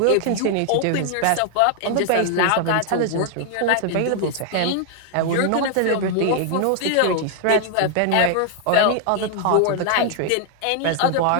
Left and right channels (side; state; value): both; different; correlation 0.00